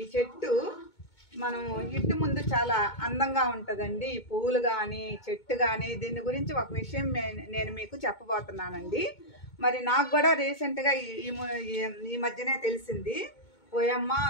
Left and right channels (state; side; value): late; right; 2.2 ms